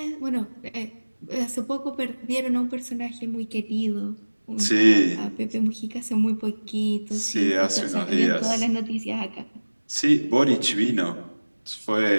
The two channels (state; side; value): inverted; both; correlation -1.00